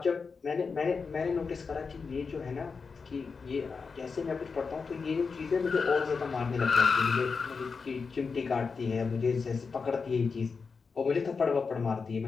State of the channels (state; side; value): quieter; right; 5.0 dB